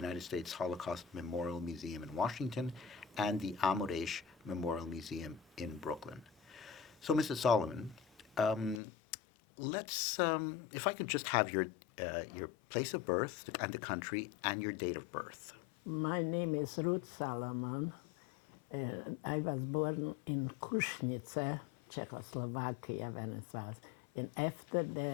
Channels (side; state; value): right; drops out; at 8.8 s